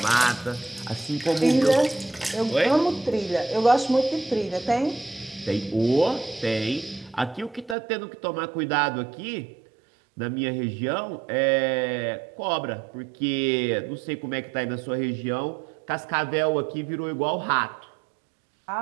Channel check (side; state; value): left; drops out; at 7.8 s